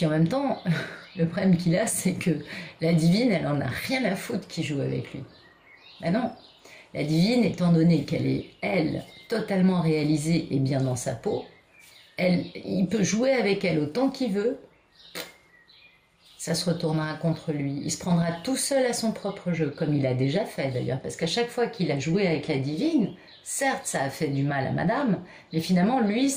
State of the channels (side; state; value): both; identical; correlation 1.00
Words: en même temps, le problème qu'il a, c'est que la divine, elle en a rien à foutre qui joue avec lui. Ben non, la divine, étant donné qu'elle est, elle, totalement réalisée et bien dans sa peau, il peut jouer avec elle autant qu'il veut, ça se retournera contre lui. Il se prendra tout seul à son propre jeu, comme il a déjà fait d'ailleurs, parce qu'à chaque fois qu'il a joué avec la divine, certes ça a fait du mal à madame, mais finalement lui,